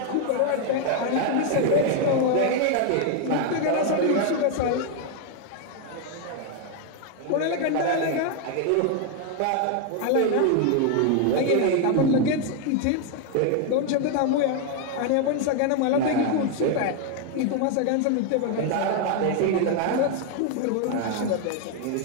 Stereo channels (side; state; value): both; different; correlation 0.01